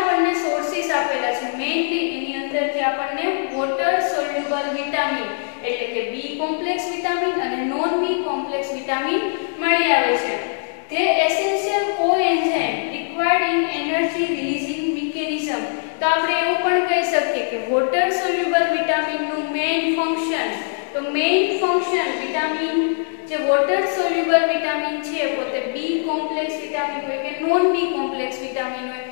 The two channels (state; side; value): silent; right; digital silence